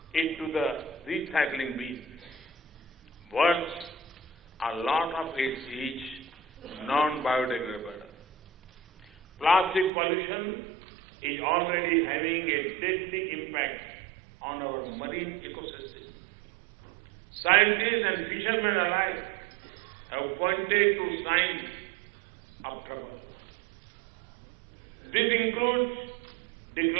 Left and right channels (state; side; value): drops out; left; at 9.9 s